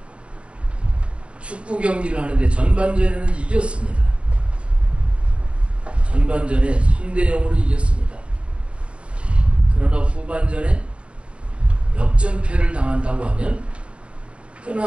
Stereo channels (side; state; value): left; late; 0.059 ms